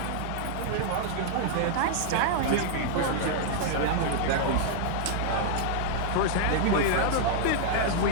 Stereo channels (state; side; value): different; both; correlation -0.01